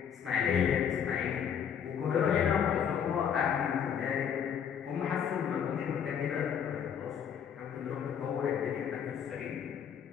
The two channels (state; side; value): quieter; right; 8.1 dB